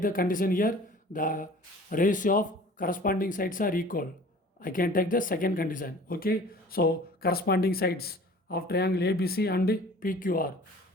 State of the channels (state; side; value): normal; both; correlation 0.46